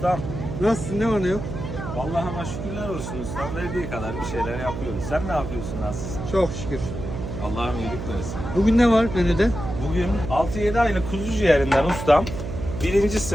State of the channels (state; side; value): noise; right; hum, 6 dB below the sound